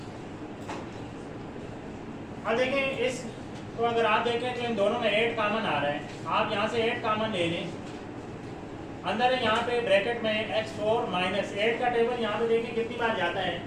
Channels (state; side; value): identical; both; correlation 1.00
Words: अब देखें इस तो अगर आप देखें तो इन दोनों में 8 कॉमन आ रहा है। आप यहाँ से 8 कॉमन ले लें। अंदर है यहाँ पे ब्रैकेट में x4 माइनस 8 का टेबल यहाँ पे देखिए कितनी बार जाता है,